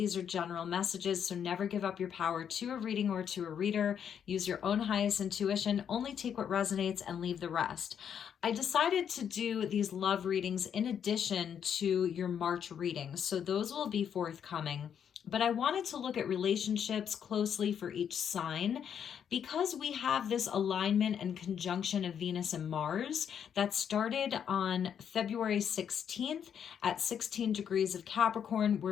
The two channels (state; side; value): quieter; right; 8.3 dB